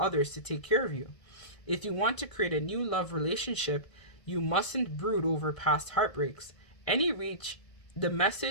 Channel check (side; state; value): right; late; 1.7 ms